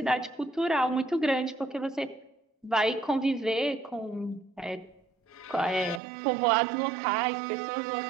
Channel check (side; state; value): left; drops out; at 6.0 s